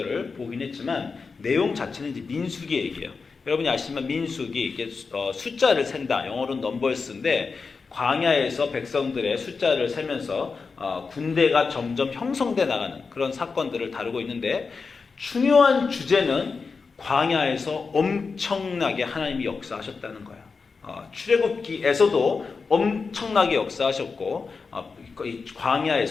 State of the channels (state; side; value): quieter; right; 4.8 dB